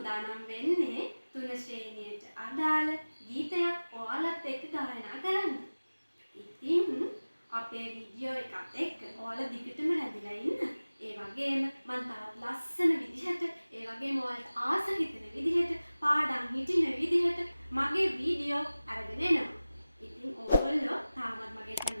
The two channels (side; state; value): both; inverted; correlation -0.98